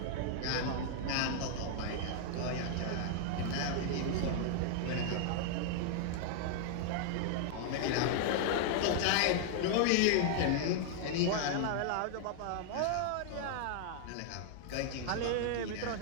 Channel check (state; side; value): different; both; correlation 0.00